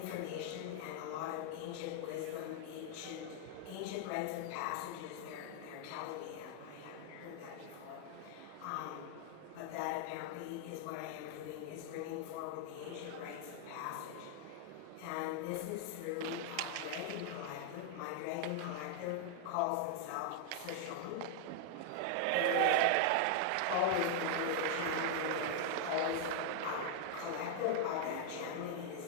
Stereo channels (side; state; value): both; different; correlation 0.00